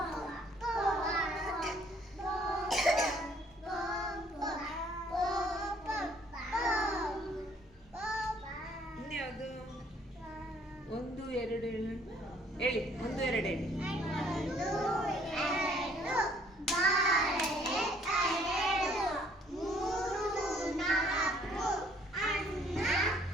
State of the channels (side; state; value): both; normal; correlation 0.61